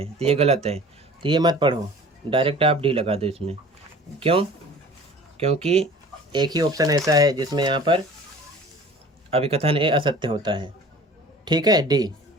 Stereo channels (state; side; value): normal; both; correlation 0.45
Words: तो ये गलत है, तो ये मत पढ़ो, डायरेक्ट आप D लगा दो इसमें। क्यों, क्योंकि एक ही ऑप्शन ऐसा है जिसमें यहाँ पर अभिकथन A असत्य होता है। ठीक है, D,